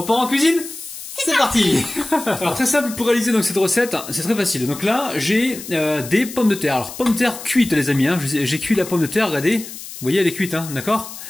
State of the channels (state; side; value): noise; left; hiss, 12 dB below the sound